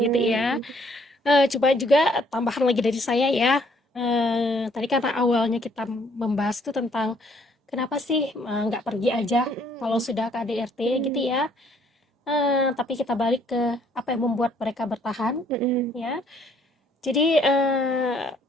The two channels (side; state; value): both; normal; correlation 0.64